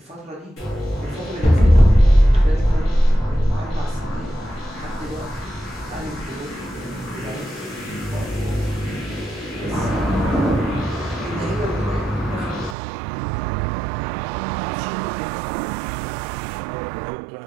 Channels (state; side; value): drops out; left; at 12.8 s